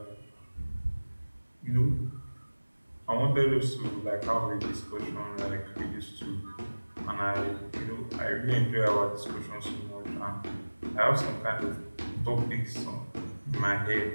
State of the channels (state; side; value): inverted; both; correlation -1.00